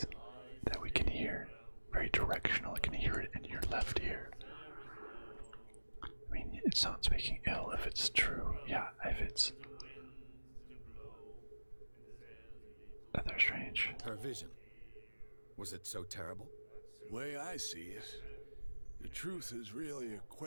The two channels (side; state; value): both; inverted; correlation -1.00